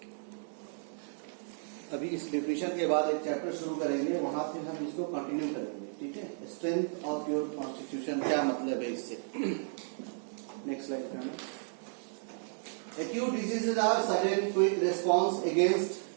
अभी इस definition के बाद एक chapter शुरू करेंगे, वहां फिर हम इसको कंटिन्यू करेंगे. ठीक है. स्ट्रेंथ ऑफ योर कॉन्स्टिट्यूशन क्या मतलब है इससे. नेक्स्ट स्लाइड पे. Acute diseases are sudden quick response against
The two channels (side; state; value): left; silent; digital silence